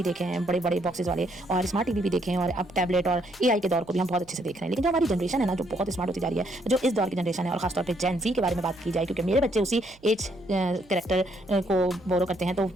देखे हैं, बड़े बड़े बॉक्सेस वाले, और स्मार्ट टीवी भी देखे हैं, और अब टैबलेट और एआई के दौर को भी हम बहुत अच्छे से देख रहे हैं। लेकिन जो हमारी जनरेशन है ना, जो बहुत स्मार्ट होती जा रही है, जो इस दौर की जनरेशन है, और खासतौर पर जेन जी के बारे में बात की जाए, क्योंकि मेरे बच्चे उसी एज कैरेक्टर को बोरो करते हैं, तो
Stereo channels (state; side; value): noise; right; hum, 27 dB below the sound